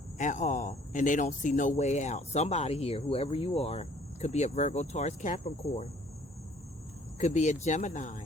at all, and they don't see no way out. Somebody here, whoever you are, could be a Virgo, Taurus, Capricorn, could be a Gemini.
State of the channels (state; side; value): normal; both; correlation 0.57